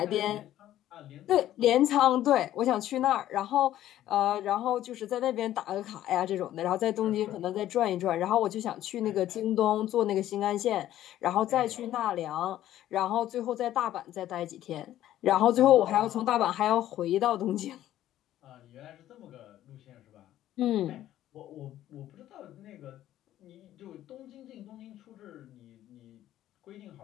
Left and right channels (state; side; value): quieter; right; 13.0 dB